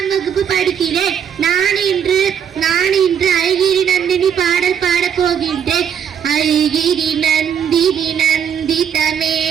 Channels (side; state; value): left; quieter; 8.3 dB